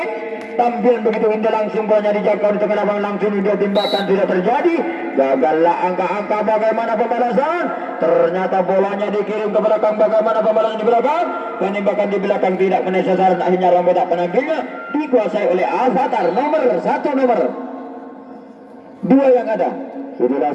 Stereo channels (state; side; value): identical; both; correlation 1.00